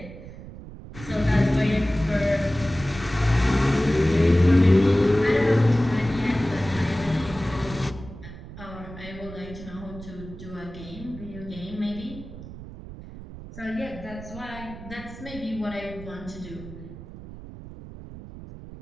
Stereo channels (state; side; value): noise; right; rumble, 14 dB below the sound